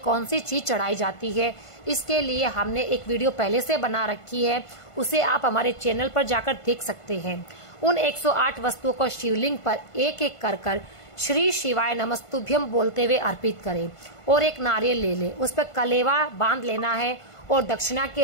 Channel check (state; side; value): late; right; 1.5 ms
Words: सी चीज चढ़ाई जाती है, इसके लिए हमने एक वीडियो पहले से बना रखी है, उसे आप हमारे चैनल पर जाकर देख सकते हैं। उन 108 वस्तुओं को शिवलिंग पर एक एक कर श्री शिवाय नमस्तुभ्यम बोलते हुए अर्पित करें और एक नारियल ले ले, उस पर कलेवा बांध लेना है और दक्षिणा